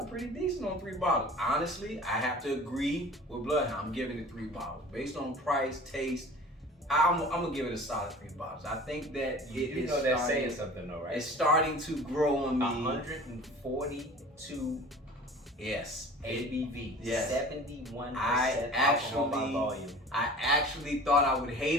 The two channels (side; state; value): both; normal; correlation 0.42